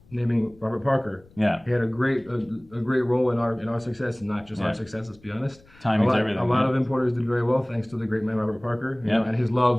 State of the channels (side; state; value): left; noise; rumble, 27 dB below the sound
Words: naming Robert Parker. Yeah, he had a great role in our success, and not just our success. Let's be honest. Timing's everything. A lot of importers did very well thanks to the great man Robert Parker, and his